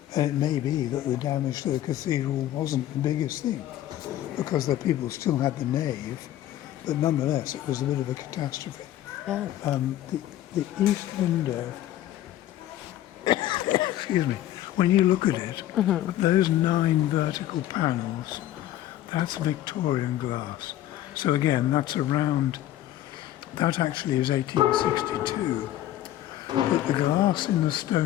And it may be that the damage to the cathedral wasn't the biggest thing, because the people still had the nave, but nonetheless it was a bit of a catastrophe. Yeah. The east window, excuse me, when you look at it, those 9 vertical panels, that's Victorian glass. So again, that's around, that actually is 1862. But the glass in the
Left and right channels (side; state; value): right; quieter; 13.3 dB